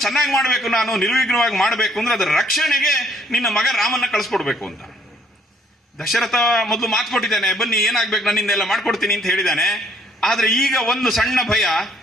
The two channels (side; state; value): both; normal; correlation 0.63